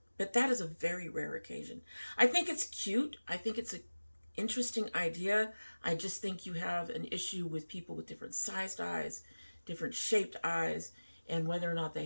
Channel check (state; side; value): inverted; both; correlation -1.00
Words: that is a very rare occasion. I think it's cute. I think it's an interesting idea. I just think you have an issue with people with different sized eyes, different shaped eyes, and whether or not they